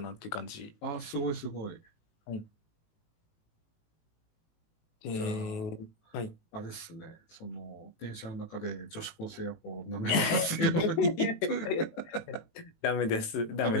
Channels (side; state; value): right; late; 18 ms